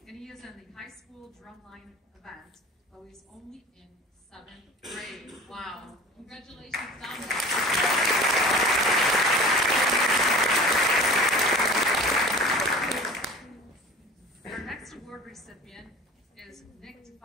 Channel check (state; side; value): normal; both; correlation 0.40